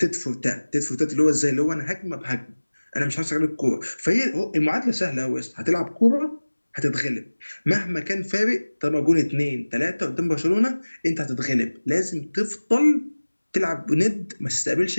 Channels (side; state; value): both; inverted; correlation -1.00